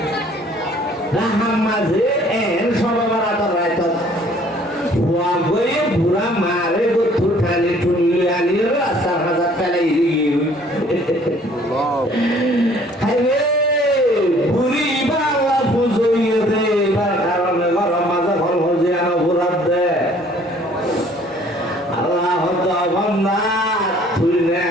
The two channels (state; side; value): normal; both; correlation 0.57